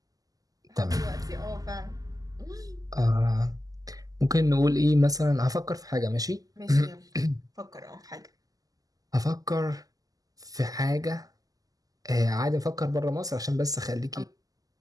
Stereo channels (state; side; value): late; left; 0.17 ms